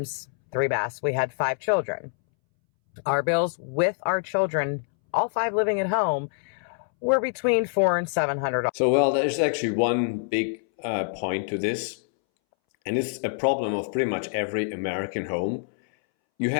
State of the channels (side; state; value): right; silent; 61 dB below the other